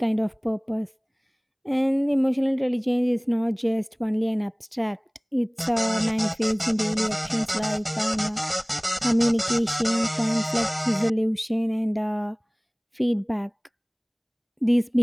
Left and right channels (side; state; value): both; identical; correlation 1.00